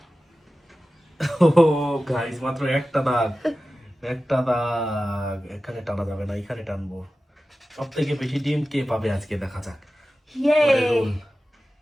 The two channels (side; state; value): both; normal; correlation 0.95